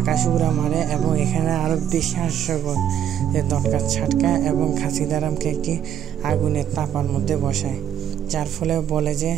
উড়া মারে এবং এখানে আরও বেশি হাস্যকর যে ঝটকা ছাটকা এবং খাসিদারামকে একটি আগুনের তাপার মধ্যে বসায়, যার ফলে বলে যে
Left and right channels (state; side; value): quieter; left; 9.7 dB